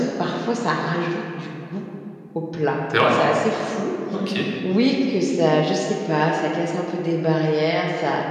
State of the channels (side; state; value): both; identical; correlation 1.00